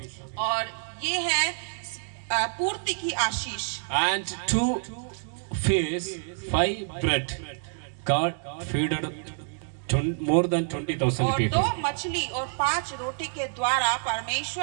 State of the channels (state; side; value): silent; left; 59 dB below the other